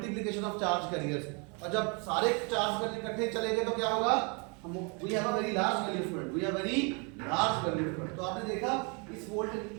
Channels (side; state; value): left; quieter; 33.8 dB